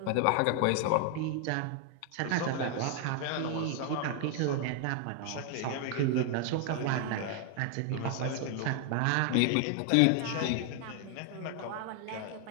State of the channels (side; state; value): both; different; correlation 0.00